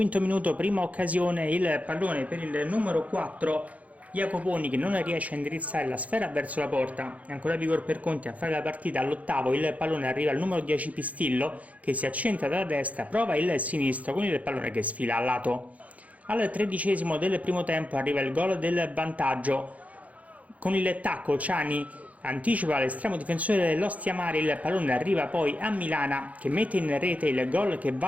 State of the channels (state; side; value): late; left; 0.069 ms